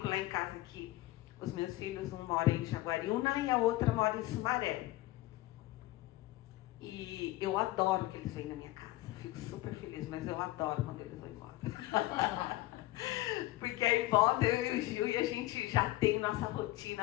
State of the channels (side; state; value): right; quieter; 17.5 dB